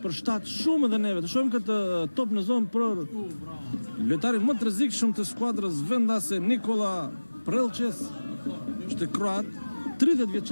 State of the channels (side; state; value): both; inverted; correlation -1.00